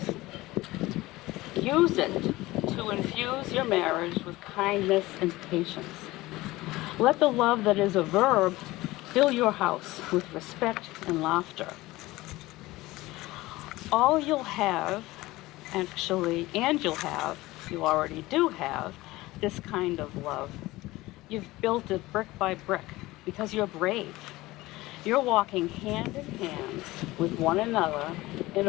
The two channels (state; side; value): quieter; right; 19.0 dB